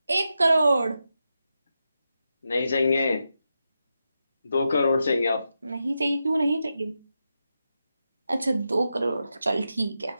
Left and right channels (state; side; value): inverted; both; correlation -0.88